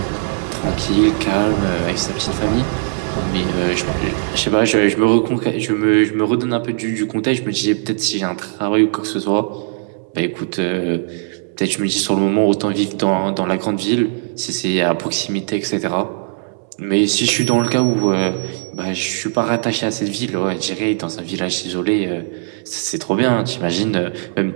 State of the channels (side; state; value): left; silent; 64 dB below the other